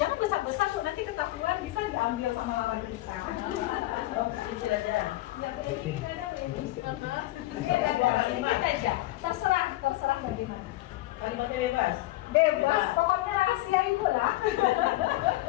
besar-besar Bu, nanti ketahuan bisa diambil sama lawan kita. Kecil aja. Ya Bu Eni, ada Bu Eni. Sedikit aja. Terserah bagaimana. Kalimatnya bebas. Bebas, pokoknya rahasia Ibu lah.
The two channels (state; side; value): quieter; right; 17.5 dB